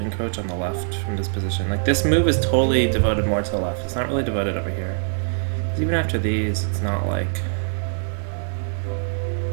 on the left from this position. Like, this move is totally devoted more to the left. It's not really devoted over here. Even after these, it's not like...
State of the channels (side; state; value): left; silent; digital silence